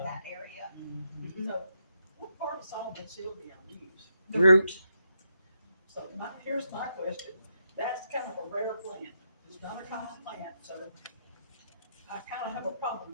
that area. So what part of solvent Sylvia use? The Root. So here's my question. That's kind of a rare plant. It's not a common plant, so I kind of have a problem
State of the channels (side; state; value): both; inverted; correlation -0.81